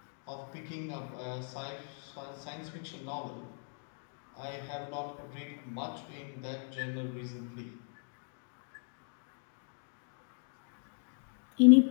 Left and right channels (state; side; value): silent; right; 53 dB below the other